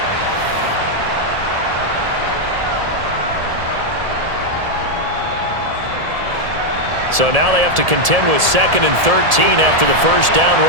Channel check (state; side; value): late; left; 1.7 ms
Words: So now they have to contend with 2nd and 13 after the first down